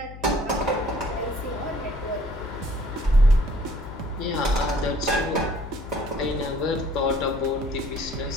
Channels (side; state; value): left; noise; hum, 14 dB below the sound